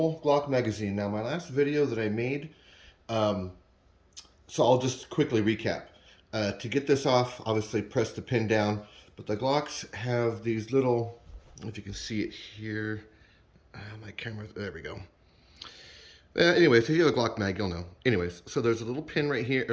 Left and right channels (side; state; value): both; identical; correlation 1.00